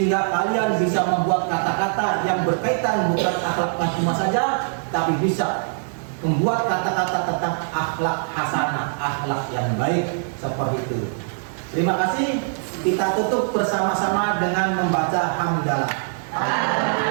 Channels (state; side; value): silent; left; digital silence